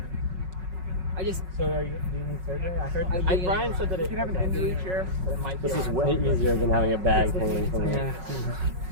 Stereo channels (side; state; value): left; late; 5.4 ms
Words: I just do you need surgery? I heard Brian said that You can have an injury chair. that it might this be is way easier than having a bag hanging from yeah.